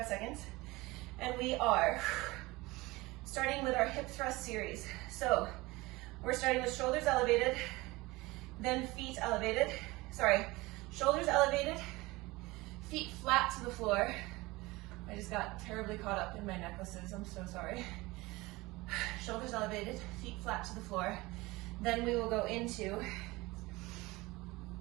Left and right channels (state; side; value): quieter; left; 21.5 dB